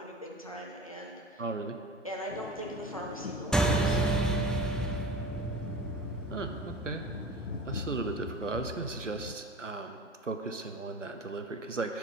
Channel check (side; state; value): both; normal; correlation 0.37